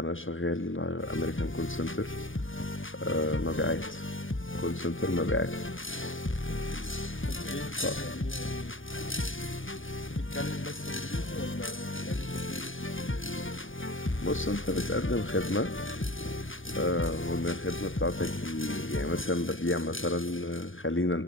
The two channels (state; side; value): late; right; 0.58 ms